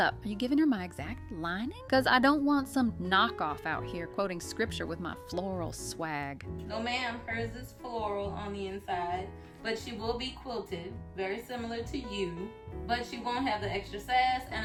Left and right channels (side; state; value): both; identical; correlation 1.00